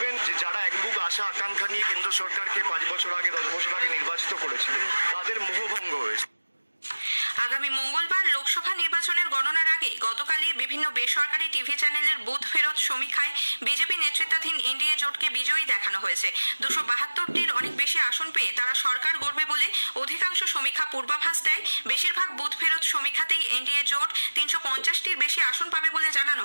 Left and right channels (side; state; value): both; inverted; correlation -1.00